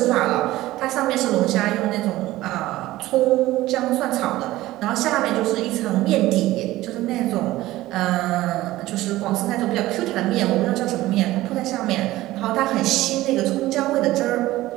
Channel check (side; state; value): left; quieter; 16.7 dB